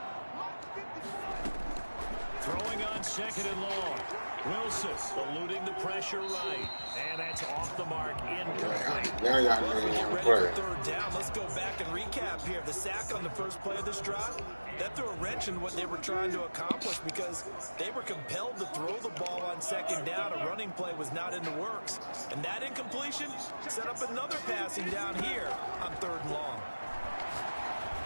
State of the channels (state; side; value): inverted; both; correlation -1.00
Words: Throwing on second and long. Wilson eluding the pressure right. And that's off the mark, incomplete. Now y'all Get ready play. for third down. Let's go back and recap here. The sack on the first play of this drive, that threw a wrench in what they were trying to accomplish because they were compelled to throw the ball on second down. A running play was not in the works. And that incompletion set up another passing down here on third and long.